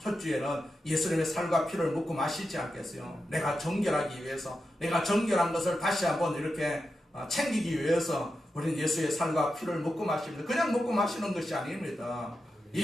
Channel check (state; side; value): normal; both; correlation 0.89